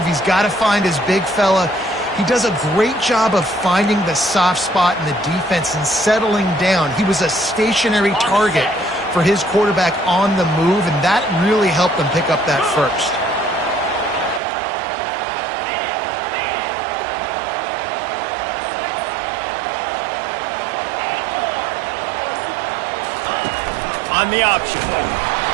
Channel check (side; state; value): left; drops out; at 14.4 s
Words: He's got to find his big fella. He does a great job of finding the soft spot in the defense and settling down. He was a stationary target for his quarterback on the move, and that really helped them pick up that 1st. on the option.